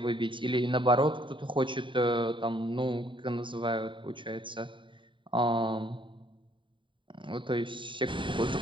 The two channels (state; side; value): late; left; 0.24 ms